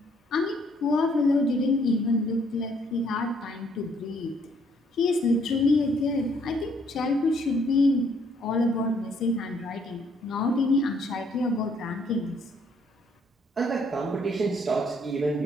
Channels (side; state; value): both; normal; correlation 0.66